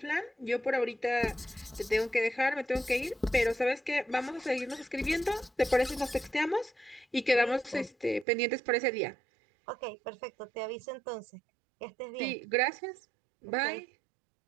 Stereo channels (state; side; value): drops out; left; at 8.2 s